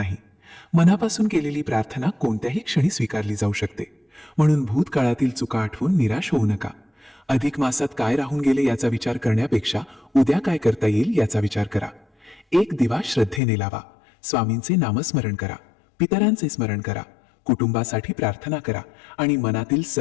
मनापासून केलेली प्रार्थना कोणत्याही क्षणी स्वीकारली जाऊ शकते. म्हणून भूतकाळातील चुका आठवून निराश होऊ नका. अधिक मासात काय राहून गेले याचा विचार करण्यापेक्षा उद्या काय करता येईल याचा विचार करा. एक दिवा श्रद्धेने लावा, स्वामींचे नामस्मरण करा, पितरांचे स्मरण करा, कुटुंबासाठी प्रार्थना करा आणि मनातील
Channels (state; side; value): drops out; right; at 13.4 s